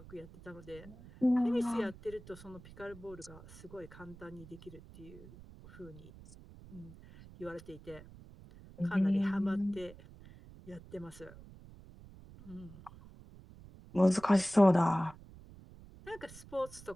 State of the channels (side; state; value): right; noise; rumble, 19 dB below the sound